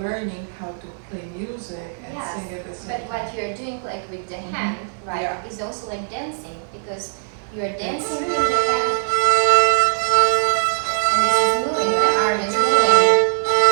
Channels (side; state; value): left; silent; 57 dB below the other